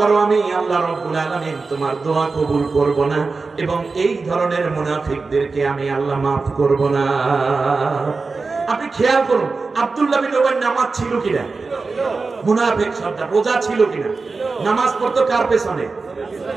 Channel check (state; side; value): quieter; left; 4.1 dB